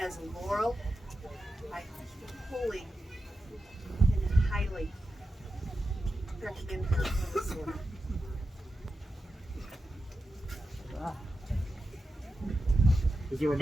as a laurel, I fully and highly recommend her for this order. Is there a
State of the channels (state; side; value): normal; both; correlation 0.90